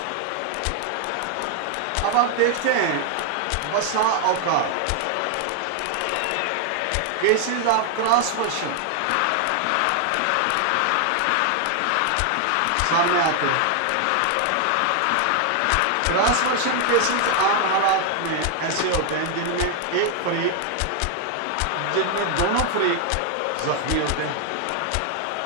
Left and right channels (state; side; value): different; both; correlation 0.00